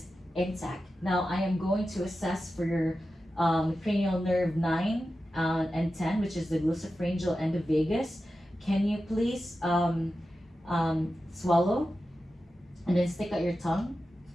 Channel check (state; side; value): normal; both; correlation 0.92